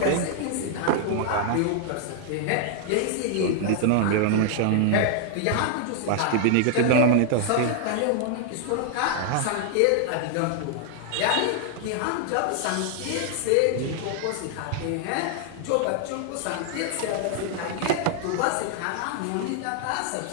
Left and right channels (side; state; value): both; different; correlation 0.00